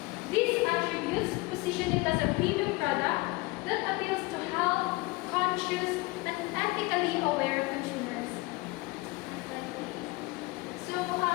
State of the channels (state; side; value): quieter; right; 23.0 dB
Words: These attributes position it as a premium product that appeals to health-conscious and ethically aware consumers. So,